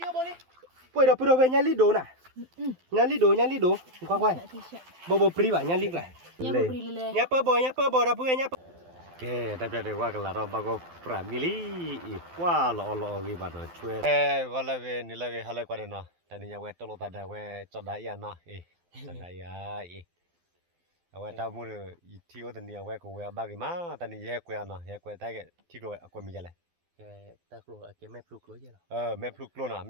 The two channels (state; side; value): late; left; 12 ms